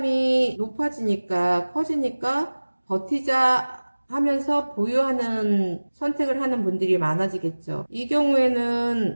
높아지니까 커지니까 버티자 하면서 보유하는 선택을 하는 분들이 많아지겠죠. 이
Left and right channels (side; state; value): both; inverted; correlation -1.00